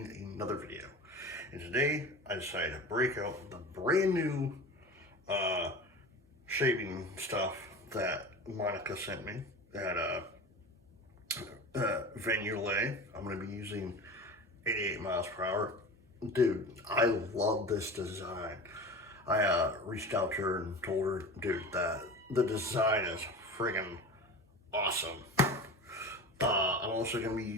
another video, and today I decided to break out the brand new shaving stuff that Monica sent me at Yulay. I'm going to be using 88 miles per hour. Dude, I love this design. I reached out to her and told her, dude, that the design is friggin' awesome. I'm also going to be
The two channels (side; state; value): both; normal; correlation 0.33